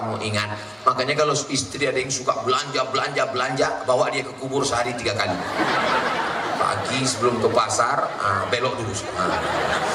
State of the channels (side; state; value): both; identical; correlation 1.00